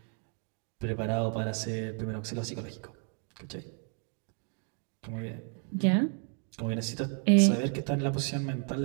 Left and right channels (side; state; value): left; quieter; 39.6 dB